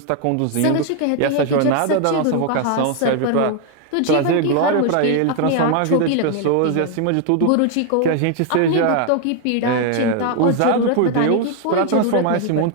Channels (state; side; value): different; both; correlation 0.00